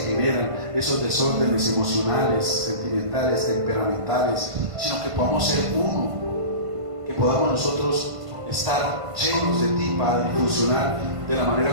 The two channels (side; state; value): left; late; 1.5 ms